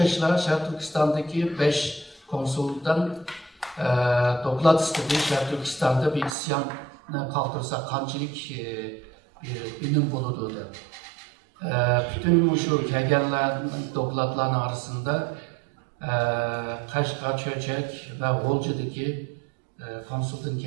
Şer Türkistan'daki 5 konsoldan doklat istedi. Şer Türkistan'da bir isyan kalktırsa kançilik bir ünüm buludu. Bütün şu kelgenlerin doklatların arasında Kaşgar, Çöçek ve Volca'daki konsultan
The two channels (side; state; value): left; drops out; at 6.4 s